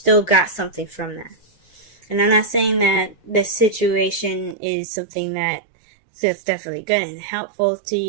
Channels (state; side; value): drops out; left; at 4.5 s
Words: got something from that. And I'm not saying that this situation is something that's definitely good and helpful to